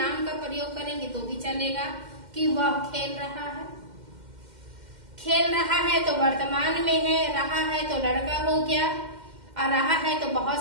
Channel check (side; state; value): left; late; 2.1 ms